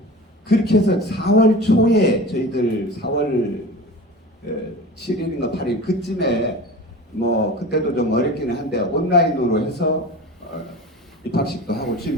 그렇게 해서 4월 초에 저희들 4월 7일인가 8일 그쯤에 그때도 좀 어렵기는 한데 온라인으로 해서 입학식도 하고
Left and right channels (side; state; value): both; normal; correlation 0.34